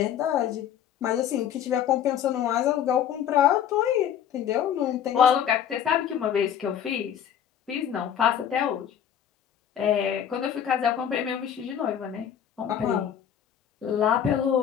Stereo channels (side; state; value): right; quieter; 9.4 dB